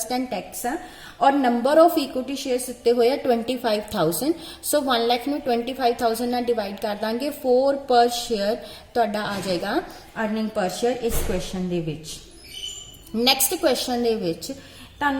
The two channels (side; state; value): both; identical; correlation 1.00